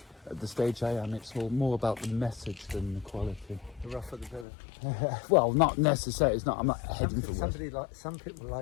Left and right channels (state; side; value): drops out; right; at 4.5 s